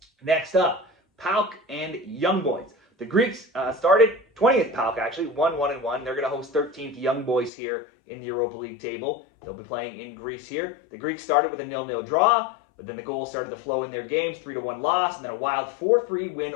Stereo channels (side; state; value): right; drops out; at 7.5 s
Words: Next up, PAOK and Young Boys. The Greeks started 20th PAOK, actually, 1-1-1. They're going to host 13th Young Boys here in the Europa League table. They'll be playing in Greece here. The Greeks started with a 0-0 draw, but then the goals started to flow in their games, 3-1 loss, and then a wild 4-3 win